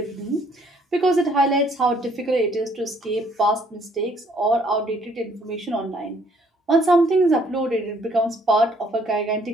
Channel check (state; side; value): normal; both; correlation 0.64